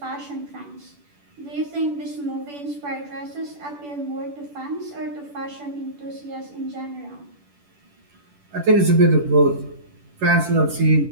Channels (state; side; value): late; left; 10 ms